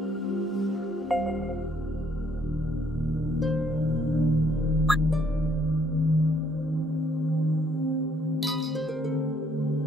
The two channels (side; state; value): both; normal; correlation 0.67